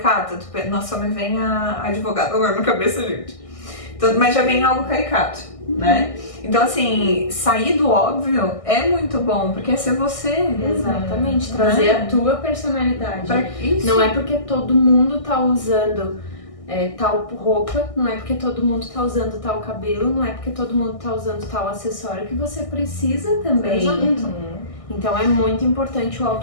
Nossa, me vem a advogada agora na cabeça, gente. Então, mas já vem algo caricato, né? Então, assim, sair do óbvio é muito bom, porque é ser você. Exatamente, trazer a tua personalidade. Isso. Não é porque todo mundo tá usando tal roupa, não é porque todo mundo tá usando tal cabelo, não é porque todo mundo tá usando tal acessório que você precisa também. Então é muito importante o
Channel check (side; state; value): right; late; 1.6 ms